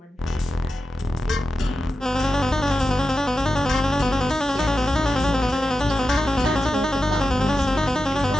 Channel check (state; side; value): normal; both; correlation 0.90